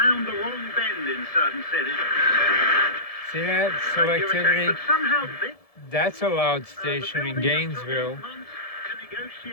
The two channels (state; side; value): late; right; 1.7 ms